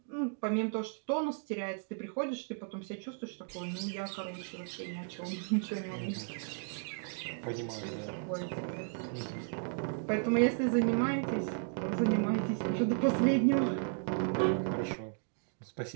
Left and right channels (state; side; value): silent; left; 55 dB below the other